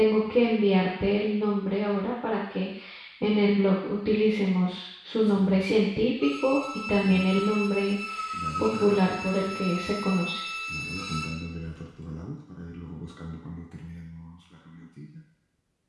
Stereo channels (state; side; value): identical; both; correlation 1.00